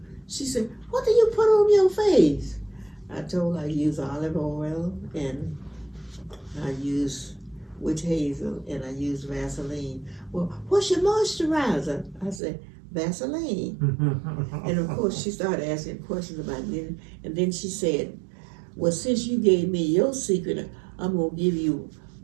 she said, "What do you put on your face?" I told her I use olive oil, and I use witch hazel, and I use Vaseline. "Well, what's your moisturizer?" I said, "Vaseline." And of course she started asking questions about it, and then she said, "Well, since you gave me your secret, I'm going to give you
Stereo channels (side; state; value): left; drops out; at 12.4 s